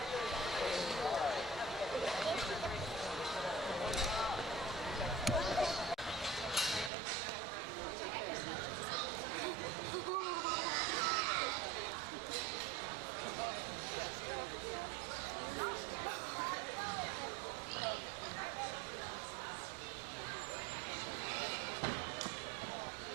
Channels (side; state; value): left; drops out; at 6.9 s